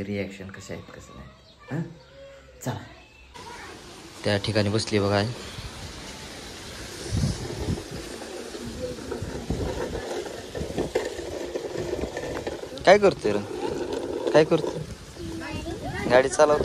रिॲक्शन कसे आहेत कसं नाही. हां, चला. त्या ठिकाणी बसली बघा. काय करतोय रे? काय करतोय? गाडी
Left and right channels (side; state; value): both; identical; correlation 1.00